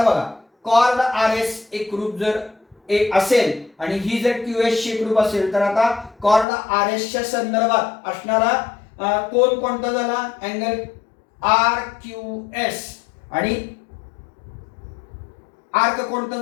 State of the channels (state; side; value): drops out; right; at 6.5 s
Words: बघा, कॉर्ड RS एकरूप जर एक असेल आणि ही जर QS ची एकरूप असेल तर आता कॉर्ड RS च्या संदर्भात असणारा कोण कोणता झाला? अँगल RQS आणि आर्क कोणता